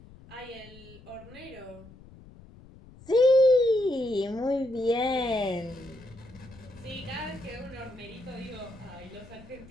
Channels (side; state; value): left; noise; rumble, 21 dB below the sound